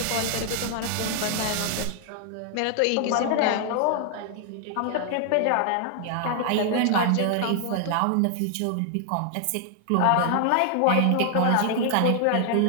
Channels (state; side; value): different; both; correlation 0.00